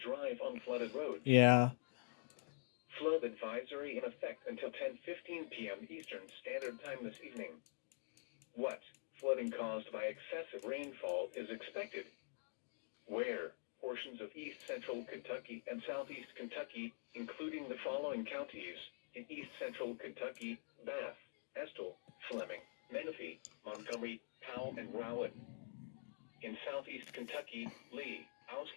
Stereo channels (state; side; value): silent; right; digital silence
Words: on flooded roads. Yeah. Flood advisory in effect until 10:15 p.m. Eastern Standard Time this evening. What flooding caused by excessive rainfall is expected? Where portions of east central Kentucky and southeast Kentucky, including the following counties: in east central Kentucky, Bath, Estill, Fleming, Menifee, Montgomery, Powell, and Rowland. In southeast Kentucky, Lee,